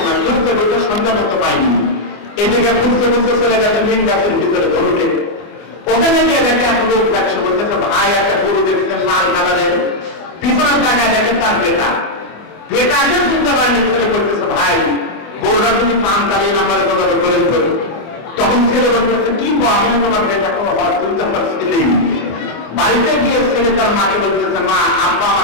ঘুরতে ঘুরতে সন্ধ্যা করতে পাইনি, এদিকে ঘুরতে ঘুরতে চলে গেছে মেন গাছের ভিতরে ধরুকে। ওখানে গিয়ে দেখে এক লোক দেখছে, বলতেছে ভাই একটা গরু দেখছেন লাল কালারের, পিছনের জায়গায় দেখেন তার বেটাকে চিনতে পারেনি। ছেলে বলতেছে ভাই গরুটা তুমি পান চালিয়ে নাম্বারে কথা করে ধরো। তখন ছেলে বলতেছে কি আমি তোমার বেটা কোনো হয়, তুমি তো আমার ছেলেই। বাড়িতে গিয়ে ছেলে তার মাকে বলতেছে মা আব্বা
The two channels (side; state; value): right; late; 24 ms